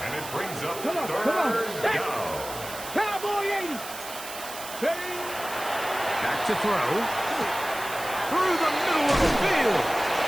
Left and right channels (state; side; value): noise; right; hiss, 11 dB below the sound